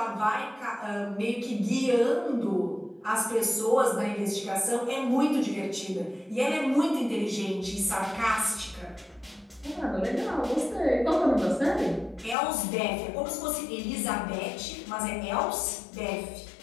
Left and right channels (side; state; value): right; drops out; at 12.4 s